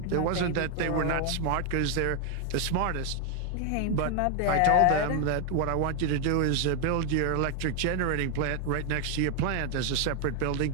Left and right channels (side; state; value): both; different; correlation 0.01